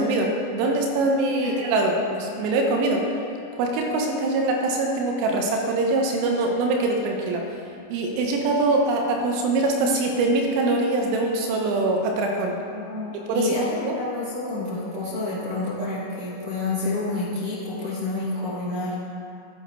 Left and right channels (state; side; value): late; left; 29 ms